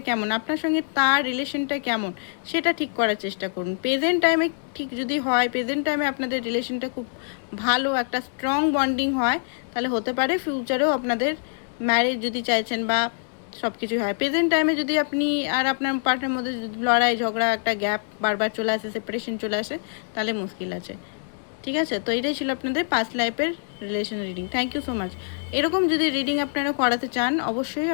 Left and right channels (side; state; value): right; silent; 62 dB below the other